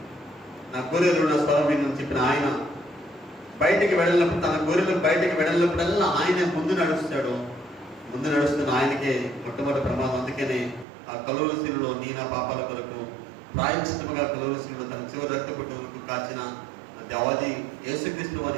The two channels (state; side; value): drops out; left; at 10.9 s